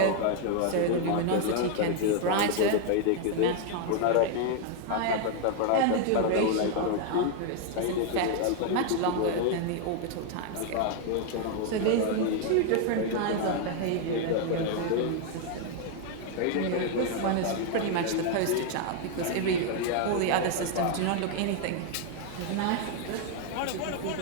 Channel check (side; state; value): both; different; correlation 0.00